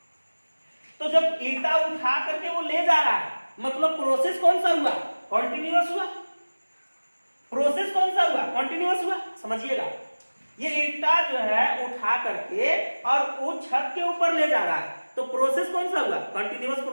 तो जब ईंटा उठा करके वो ले जा रहा है, मतलब प्रोसेस कौन सा हुआ, कॉन्टिन्यूअस हुआ, प्रोसेस कौन सा हुआ, कॉन्टिन्यूअस हुआ। समझिएगा, ये ईंटा जो है उठा करके और वो छत के ऊपर ले जा रहा है, तो प्रोसेस कौन सा हुआ, कंटिन्यूअस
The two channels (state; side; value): inverted; both; correlation -1.00